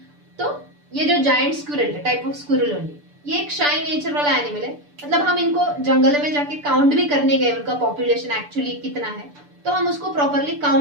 तो ये जो जायंट स्क्विरल है, टाइप ऑफ स्क्विरल ओनली, ये एक शाय नेचर वाला एनिमल है. मतलब हम इनको जंगल में जाके काउंट भी करने गए, उनका पॉपुलेशन एक्चुअली कितना है, तो हम उसको प्रॉपरली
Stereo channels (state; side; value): late; left; 6.8 ms